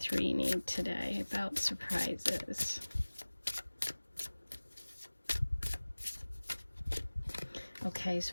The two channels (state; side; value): inverted; both; correlation -1.00